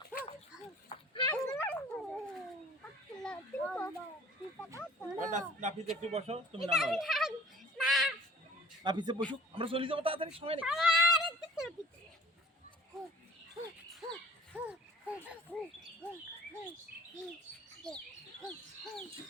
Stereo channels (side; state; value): both; normal; correlation 0.50